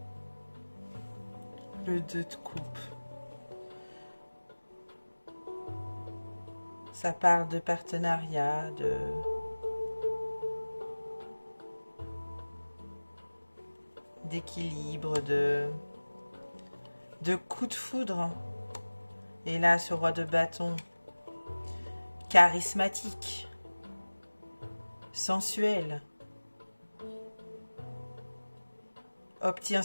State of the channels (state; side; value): inverted; both; correlation -1.00